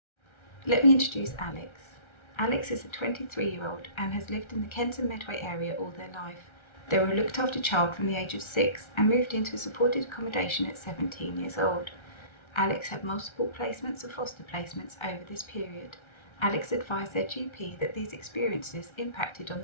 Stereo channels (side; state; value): right; late; 1.3 ms